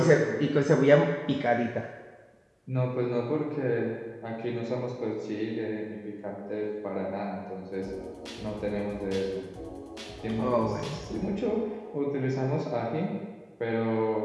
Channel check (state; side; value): identical; both; correlation 1.00